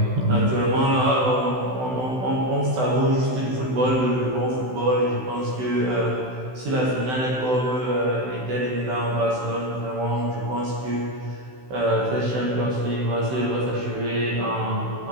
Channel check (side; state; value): left; late; 16 ms